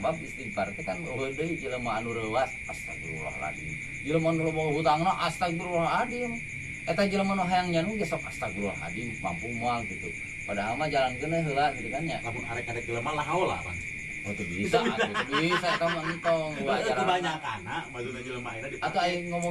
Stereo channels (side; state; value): both; identical; correlation 1.00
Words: istighfar teh kan eueuh deui jelema anu reuwas, astagfirullahaladzim. Jelema anu loba hutangna astagfirullahaladzim. Eta jelema nu hayang nyanu ge sok astagfirullahaladzim, mampu moal gitu. Padahal mah jalankeun heula gitu kan ya. Lamun arek-arek jelema lah haula Bang. Oh tuh bisa, atuh bisa eta mah entong wajar. Kebanyakan maksudnya jelema ayeuna Atau aing